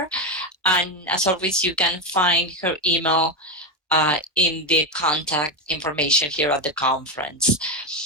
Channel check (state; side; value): normal; both; correlation 0.11